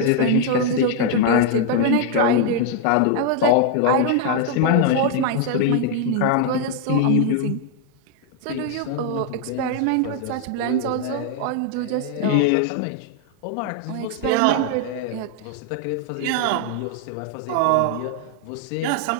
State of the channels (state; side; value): different; both; correlation 0.00